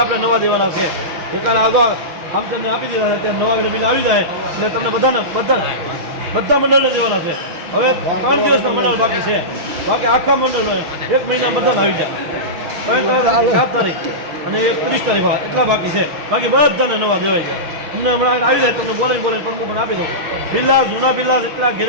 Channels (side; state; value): left; late; 6.4 ms